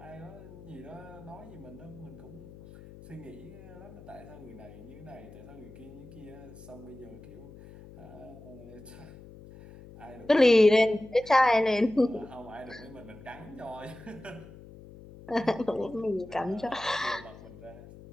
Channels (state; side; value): noise; left; hum, 17 dB below the sound